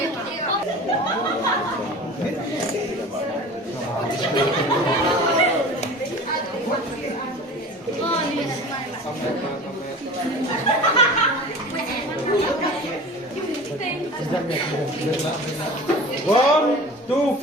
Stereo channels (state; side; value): normal; both; correlation 0.40